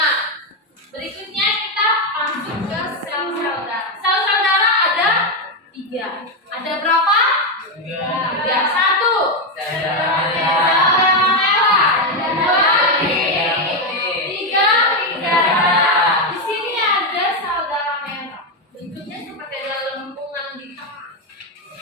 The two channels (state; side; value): normal; both; correlation 0.07